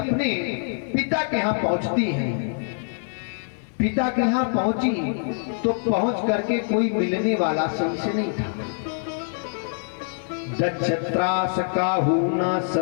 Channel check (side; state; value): right; silent; digital silence